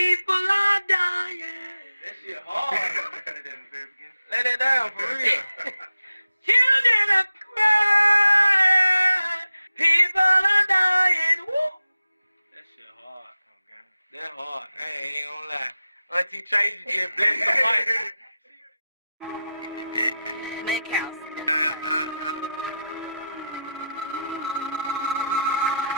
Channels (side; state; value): both; inverted; correlation -0.88